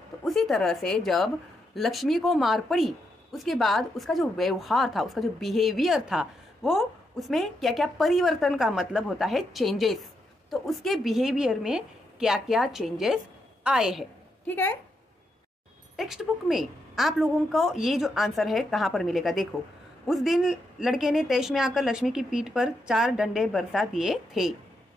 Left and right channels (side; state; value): both; normal; correlation 0.82